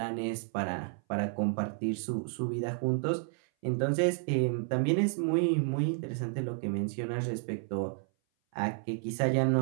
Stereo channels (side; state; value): left; silent; 57 dB below the other